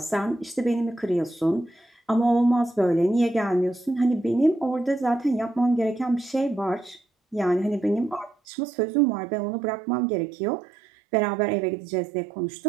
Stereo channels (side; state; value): left; drops out; at 8.3 s